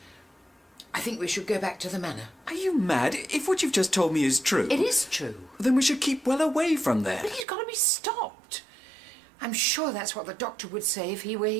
I think we should go back to the manor. Are you mad? If what you've just told me is true... It is true. Then we should keep well away from there. But he's got to be stopped. I'm sure that's what the doctor would say if he were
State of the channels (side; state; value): left; drops out; at 7.5 s